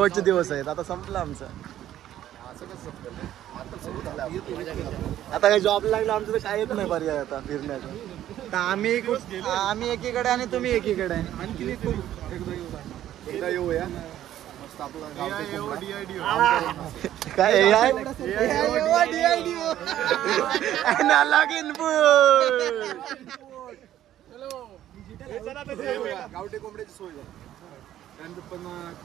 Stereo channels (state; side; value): quieter; left; 12.2 dB